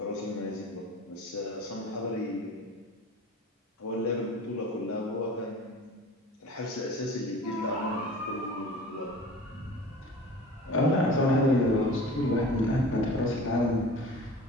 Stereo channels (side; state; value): both; normal; correlation 0.40